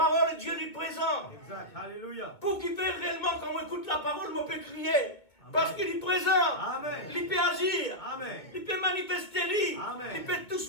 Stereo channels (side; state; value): right; late; 2.2 ms